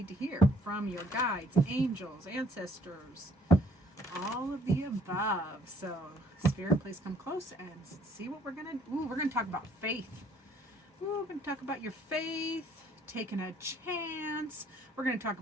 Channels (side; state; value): both; normal; correlation 0.61